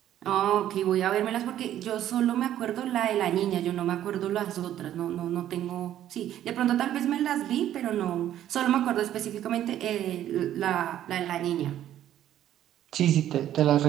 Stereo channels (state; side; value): quieter; left; 11.7 dB